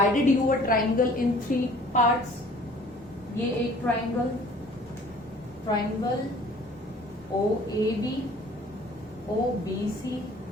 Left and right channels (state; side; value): normal; both; correlation 0.52